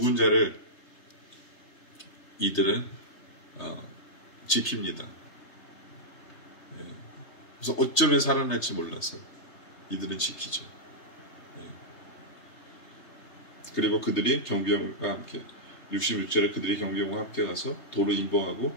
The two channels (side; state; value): right; late; 3.3 ms